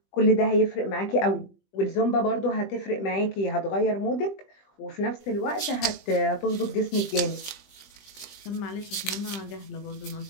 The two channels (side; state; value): right; late; 20 ms